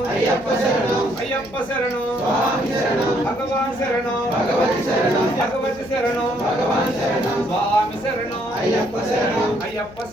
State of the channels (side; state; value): left; noise; hum, 21 dB below the sound